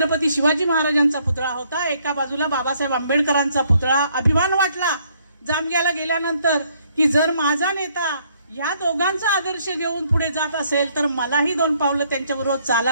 शिवाजी महाराजांचा पुतळा होता, एका बाजूला बाबासाहेब आंबेडकरांचा पुतळा. अभिमान वाटला जामग्याला गेल्यानंतर की जर माझा नेता या दोघांचा आदर्श घेऊन पुढे जात असेल तर मलाही 2 पावलं त्यांच्याबरोबर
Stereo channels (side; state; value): both; inverted; correlation -0.67